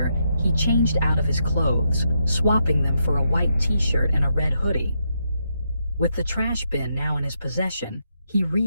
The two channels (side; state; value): both; inverted; correlation -0.81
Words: he changed out of his clothes, swapping them for a white t-shirt and a red hoodie. With the trash bin now in his possession, he